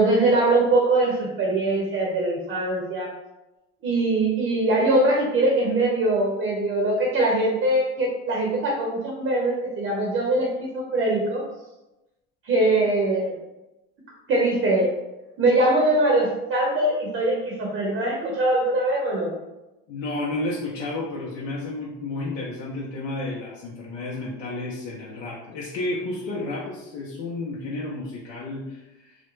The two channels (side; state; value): both; normal; correlation 0.27